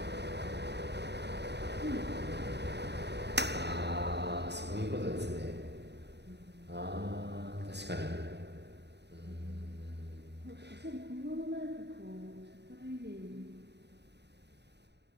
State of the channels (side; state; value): left; late; 0.50 ms